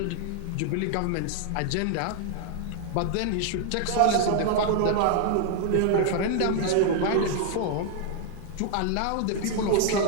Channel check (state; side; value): different; both; correlation 0.00